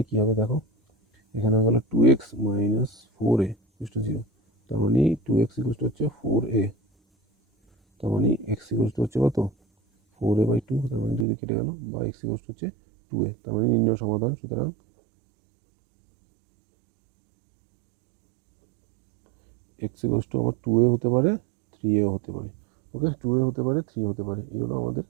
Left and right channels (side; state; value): left; drops out; at 11.2 s